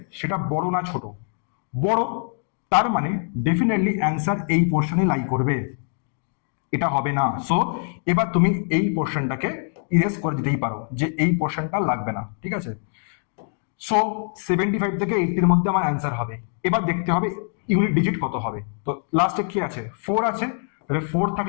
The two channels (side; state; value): right; silent; 60 dB below the other